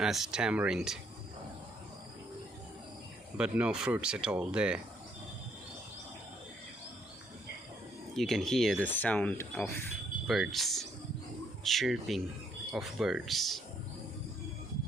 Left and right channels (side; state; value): both; normal; correlation 0.70